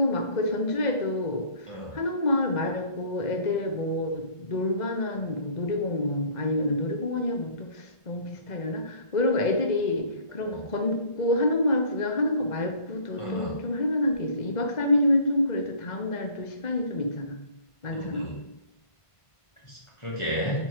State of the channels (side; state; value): right; late; 1.5 ms